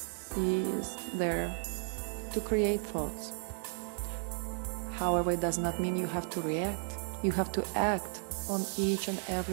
is there to create thoughts. However, it does not mean you have to react. You have to act on each and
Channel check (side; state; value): left; silent; 55 dB below the other